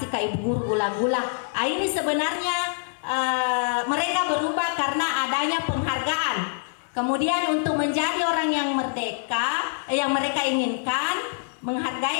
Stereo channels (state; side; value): silent; right; 62 dB below the other